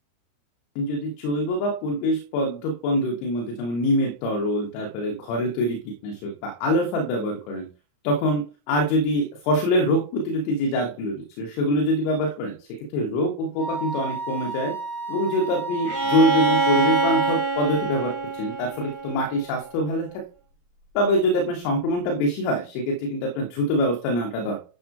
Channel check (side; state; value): right; late; 34 ms